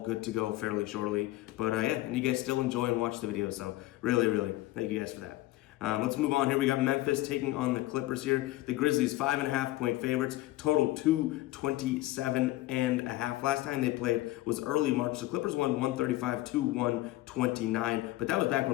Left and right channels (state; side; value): quieter; right; 17.4 dB